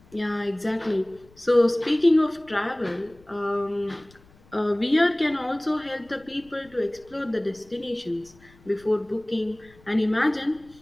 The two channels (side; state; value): left; noise; rumble, 27 dB below the sound